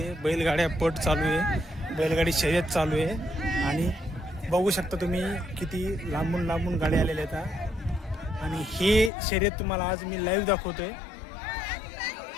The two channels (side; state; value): right; drops out; at 9.1 s